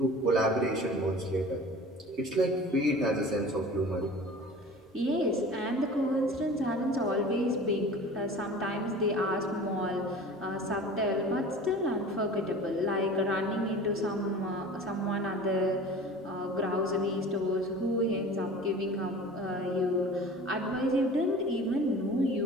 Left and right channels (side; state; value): both; normal; correlation 0.40